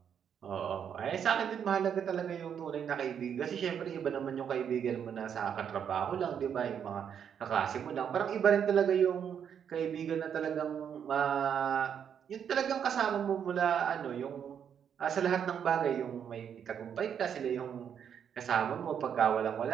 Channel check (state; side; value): quieter; left; 8.2 dB